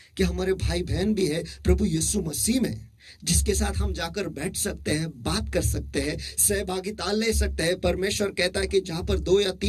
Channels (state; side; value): identical; both; correlation 1.00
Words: कि हमारे भाई बहन भी है प्रभु यीशु मसीह में, जिसके साथ हम जाकर बैठ सकते हैं, बात कर सकते हैं, सहभागिता ले सकते हैं। परमेश्वर कहता है कि जहां पर 2 या